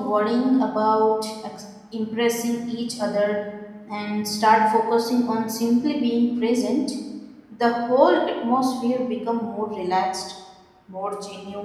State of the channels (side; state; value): both; identical; correlation 1.00